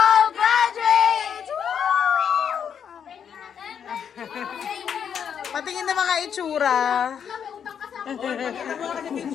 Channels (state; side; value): quieter; right; 7.9 dB